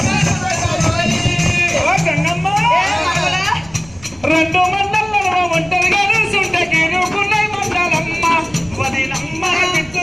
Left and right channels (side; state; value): right; noise; rumble, 23 dB below the sound